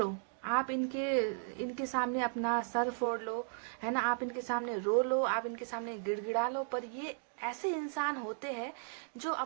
आप इनके सामने अपना सर फोड़ लो, है ना, आप इनके सामने रो लो, आप इनके सामने गिड़गिड़ा लो, पर ये ऐसे इंसान होते हैं जो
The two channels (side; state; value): left; silent; digital silence